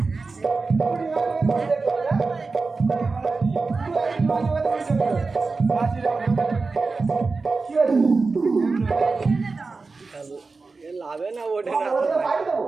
লাভে না ওঠে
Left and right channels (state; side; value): quieter; left; 4.1 dB